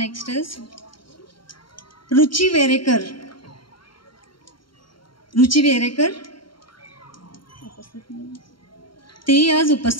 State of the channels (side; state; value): right; late; 0.73 ms